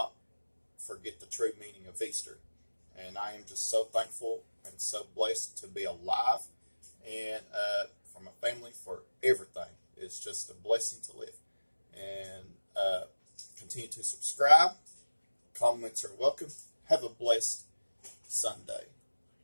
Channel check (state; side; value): inverted; both; correlation -1.00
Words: forget the true meaning of Easter. And I am just so thankful and so blessed to be alive, and for my family, for everything. It's just a blessing to live. And continue to subscribe. Comments are welcome. Have a blessed Sunday.